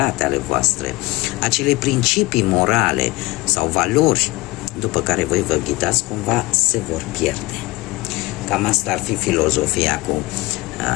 ale voastre, acele principii morale sau valori după care voi vă ghidați, cumva se vor pierde. Cam asta ar fi filozofia cu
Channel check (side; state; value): right; quieter; 21.0 dB